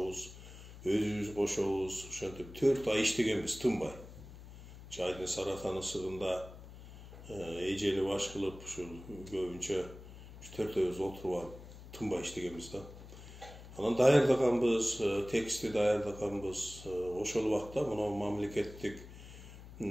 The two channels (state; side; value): noise; left; hum, 16 dB below the sound